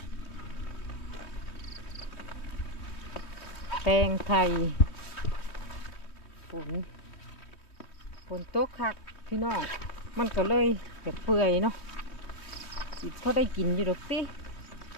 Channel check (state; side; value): late; right; 3.1 ms